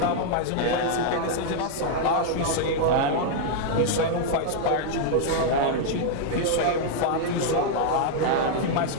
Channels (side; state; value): both; different; correlation -0.01